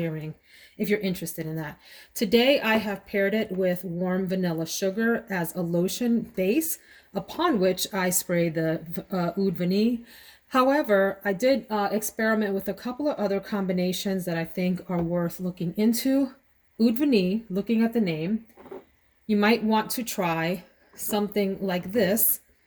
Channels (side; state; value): both; identical; correlation 1.00